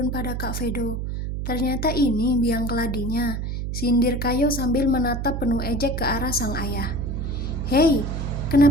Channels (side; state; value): right; noise; hum, 3 dB below the sound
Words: pada Kak Vedo. Ternyata ini biang keladinya, sindir Kayo sambil menatap penuh ejek ke arah sang ayah. Hei,